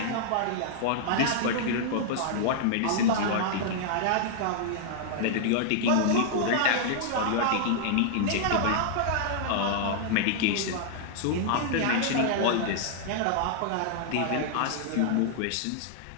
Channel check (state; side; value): different; both; correlation -0.01